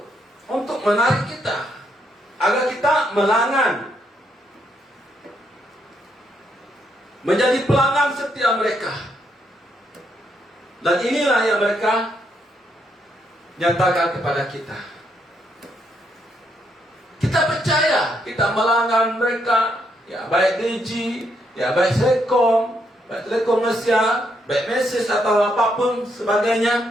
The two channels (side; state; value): both; normal; correlation 0.76